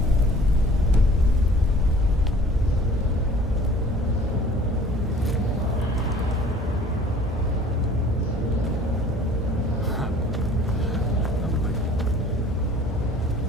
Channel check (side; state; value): both; normal; correlation 0.51